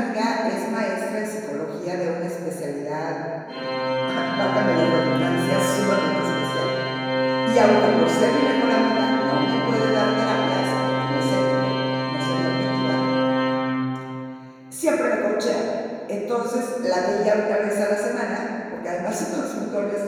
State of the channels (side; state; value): both; identical; correlation 1.00